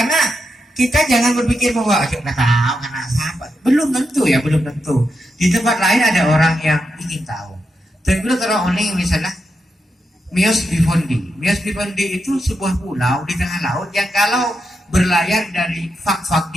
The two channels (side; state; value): both; normal; correlation 0.86